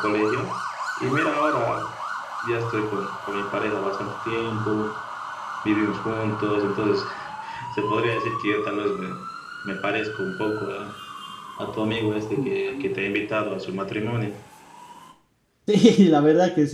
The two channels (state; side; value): identical; both; correlation 1.00